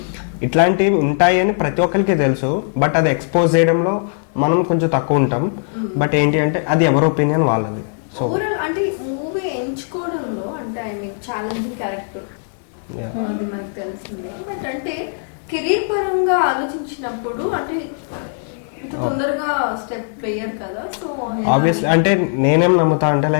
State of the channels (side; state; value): right; silent; 66 dB below the other